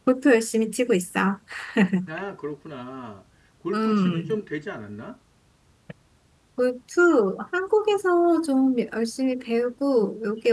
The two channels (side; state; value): both; identical; correlation 1.00